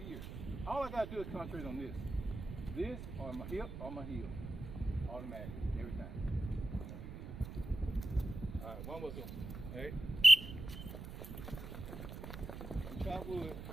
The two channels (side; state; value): right; noise; rumble, 9 dB below the sound